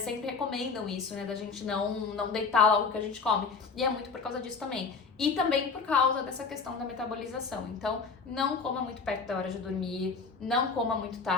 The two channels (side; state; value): right; quieter; 4.9 dB